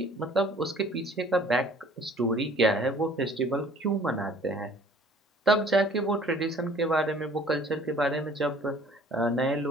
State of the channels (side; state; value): both; normal; correlation 0.53